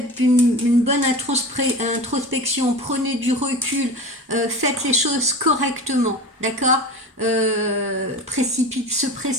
une bonne introspection, prenez du recul, faites les choses correctement, d'accord. Se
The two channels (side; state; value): both; normal; correlation 0.33